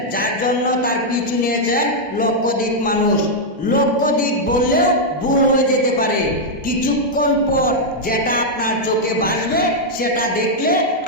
যার জন্য তার পিছু নিয়েছেন লক্ষাধিক মানুষ। লক্ষাধিক বললেও ভুল হয়ে যেতে পারে। কিছুক্ষণ পর যেটা আপনার চোখে ভাসবে সেটা দেখলে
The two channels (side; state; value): both; normal; correlation -0.03